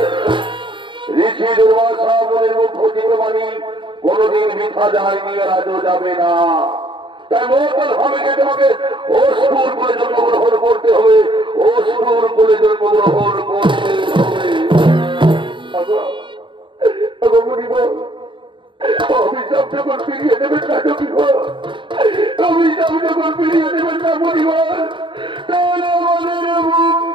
ঋষি দুর্বাসা বলে মুখ্য জীববাণী কোনদিন মিথ্যা যায়নি আর আজও যাবে না তাই মঙ্গল হবে তোমাকে অসুর করে জন্মগ্রহণ করতে হবে অসুর করে জন্মগ্রহণ করতে হবে অভিশাপ যখন ফিরিয়ে দেবেন না কি অভিশাপ যখন ফিরিয়ে দেবেন না পরিবার তাহলে আমাদের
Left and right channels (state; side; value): late; left; 0.24 ms